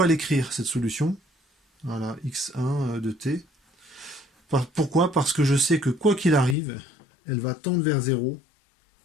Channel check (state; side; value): drops out; right; at 6.6 s